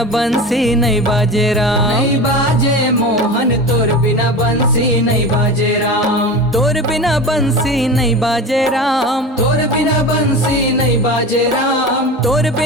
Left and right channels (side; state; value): both; normal; correlation 0.30